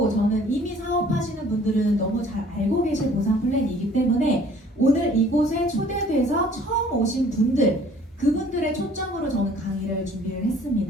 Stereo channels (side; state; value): both; normal; correlation 0.54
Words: 저는 이미 사업하시는 분들은 너무 잘 알고 계실 보상 플랜이기 때문에 오늘 이곳에 초대돼서 처음 오신 분들 그분들의 초점으로 저는 강의를 준비를